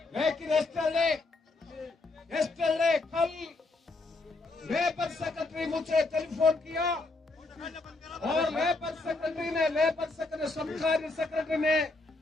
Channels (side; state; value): right; quieter; 3.3 dB